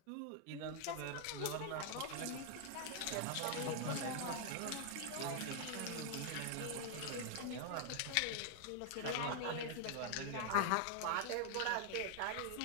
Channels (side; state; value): both; different; correlation 0.00